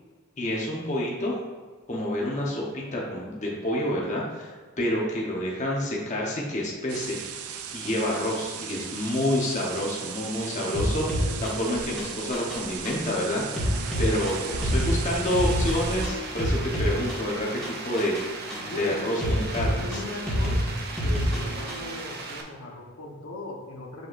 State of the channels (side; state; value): both; normal; correlation 0.53